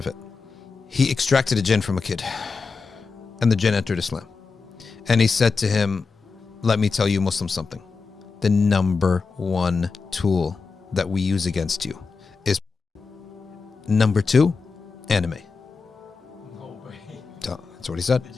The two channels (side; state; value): right; quieter; 4.7 dB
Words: He extracted a jinn from a kid, and the jinn entered Islam. And he said to him, let me tell you, Muslim, something. The number one tool that we use against you is number two, anime. No way. That's what he said. The